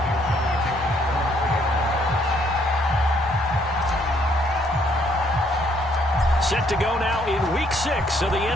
Set to go now in Week 6 of the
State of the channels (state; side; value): normal; both; correlation 0.68